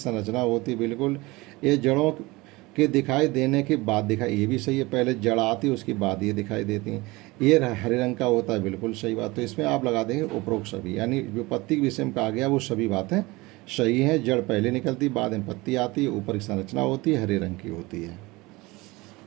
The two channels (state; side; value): quieter; left; 22.2 dB